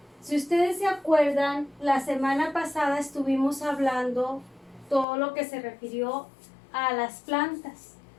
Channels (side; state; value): right; drops out; at 5.1 s